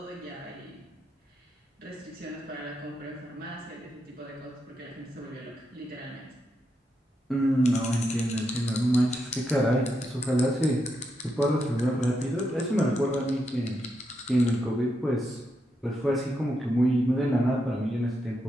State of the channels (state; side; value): normal; both; correlation 0.83